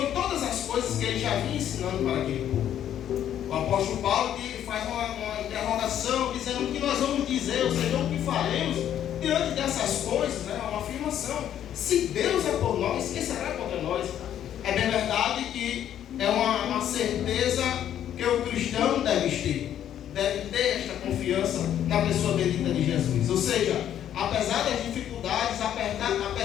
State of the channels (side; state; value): right; quieter; 10.5 dB